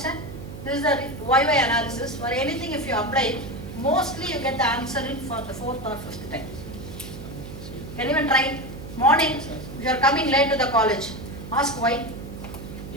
This is the why analysis. For anything, if you apply it, mostly you get the answer in for the fourth or fifth time. You can even try it. Morning, if you are coming late to the college, ask why.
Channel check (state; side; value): noise; right; hum, 11 dB below the sound